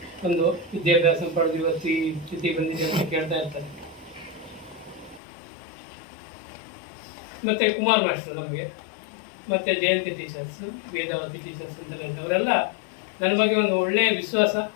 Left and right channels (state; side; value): drops out; right; at 5.2 s